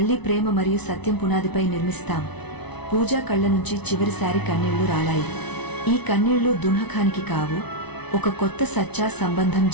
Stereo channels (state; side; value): late; right; 0.99 ms